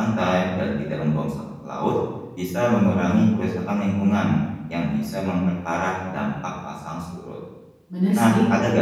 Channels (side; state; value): both; identical; correlation 1.00